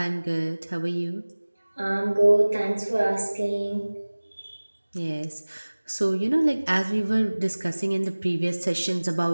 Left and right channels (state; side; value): inverted; both; correlation -1.00